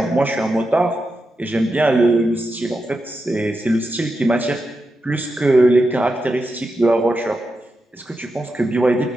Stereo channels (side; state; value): both; normal; correlation 0.88